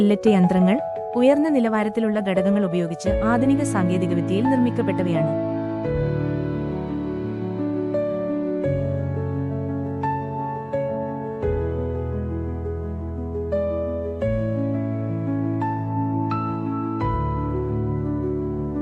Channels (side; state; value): both; identical; correlation 1.00